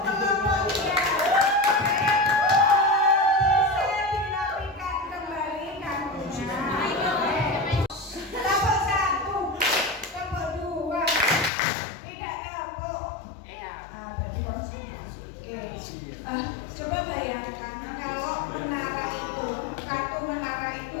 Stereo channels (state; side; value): drops out; right; at 11.5 s